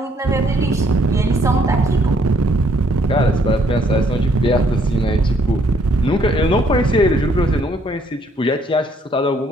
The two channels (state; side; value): normal; both; correlation 0.66